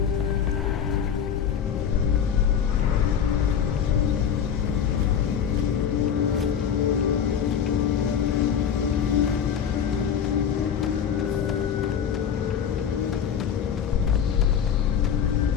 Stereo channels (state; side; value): quieter; right; 8.1 dB